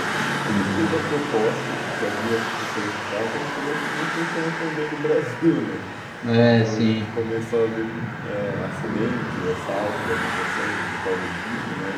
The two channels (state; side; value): identical; both; correlation 1.00